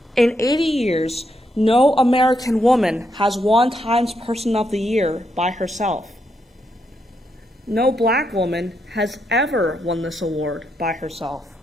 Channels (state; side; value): normal; both; correlation 0.80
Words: In 80 years, no American woman has won Times Person of the Year by herself. No Black woman has ever won this award by herself.